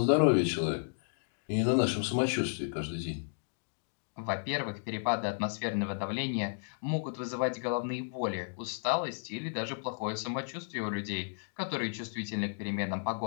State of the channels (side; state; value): right; silent; digital silence